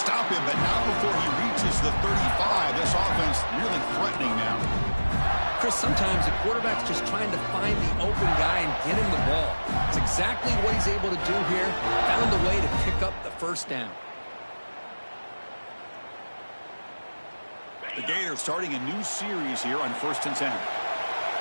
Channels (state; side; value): inverted; both; correlation -1.00